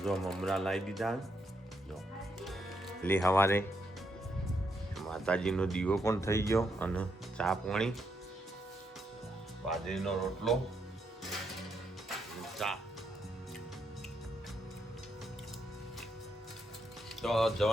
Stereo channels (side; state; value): both; normal; correlation 0.78